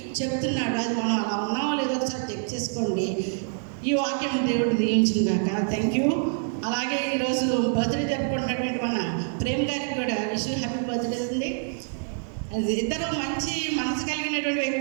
చెప్తున్నాడు. అది మనం అలా ఉన్నామో లేదో ఒకసారి చెక్ చేసుకోండి. ఈ వాక్యం దేవుడు దీవించింది కాక. Thank you. అలాగే ఈరోజు బర్త్డే జరుపుకుంటున్నటువంటి మన ప్రేమ్ గారికి కూడా హ్యాపీ బర్త్డే ఉంది. ఇద్దరు మంచి మనసు కలిగినటువంటి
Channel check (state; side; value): silent; left; 61 dB below the other